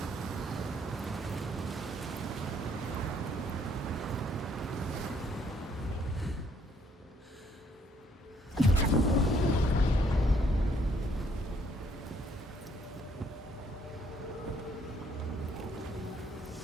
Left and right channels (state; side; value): normal; both; correlation 0.67